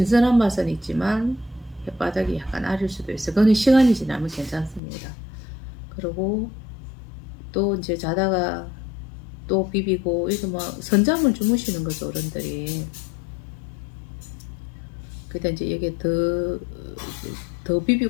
맛은 있지만 혓바닥이 약간 아릴 수도 있어요. 그거는 시간이 지나면 괜찮습니다. 그리고 또 이제 자다가 또 비비고 이거 뭐 선잠을 주무시는 거죠 어른들이. 그때 이제 여기에 더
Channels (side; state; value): right; drops out; at 4.8 s